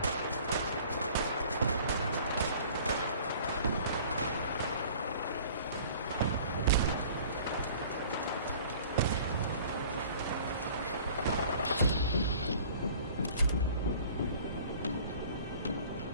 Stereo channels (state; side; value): inverted; both; correlation -0.49